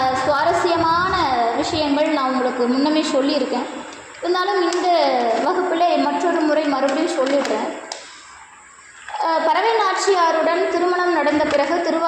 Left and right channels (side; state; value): both; identical; correlation 1.00